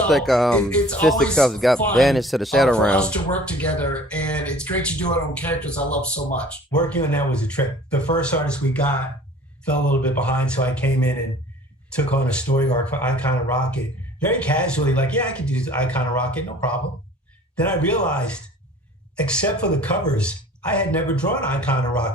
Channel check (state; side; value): normal; both; correlation 0.48